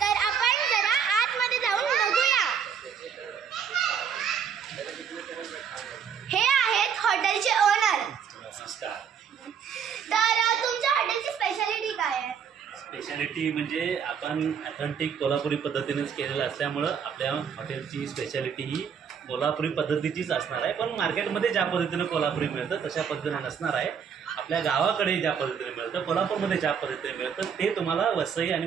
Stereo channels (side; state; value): left; quieter; 7.3 dB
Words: तर आपण जरा आतमध्ये जाऊन बघूया. हे आहेत हॉटेलचे ओनर. तर तुमच्या हॉटेलची स्पेशालिटी काय आहे? स्पेशालिटी म्हणजे आपण ऑथेंटिक कोल्हापुरी पद्धतीनेच केलेलं असल्यामुळं आपल्या हॉटेलची स्पेशालिटी ही कोल्हापुरी पद्धतीचीच असणार आहे. पण मार्केटमध्ये ज्या पद्धतीनं कोल्हापुरी मिळतं तशा पद्धतीनं नसणार आहे. आपल्या गावाकडे ज्या पद्धतीने मिळतं, कोल्हापूरमध्ये ज्या पद्धतीने मिळतं ते तुम्हाला वसई आणि